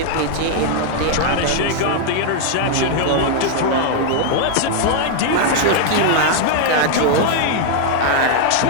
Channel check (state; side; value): different; both; correlation 0.00